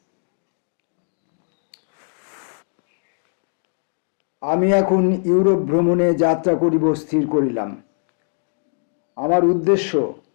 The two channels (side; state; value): right; silent; 60 dB below the other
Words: আমি এখন ইউরোপ ভ্রমণে যাত্রা করিব স্থির করিলাম। আমার উদ্দেশ্য